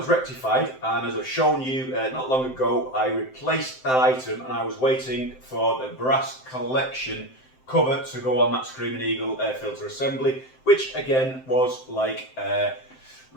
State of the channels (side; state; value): right; late; 7.7 ms